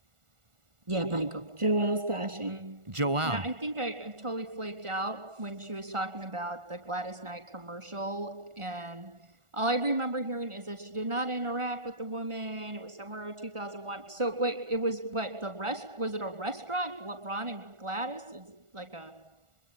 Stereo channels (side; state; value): left; late; 1.4 ms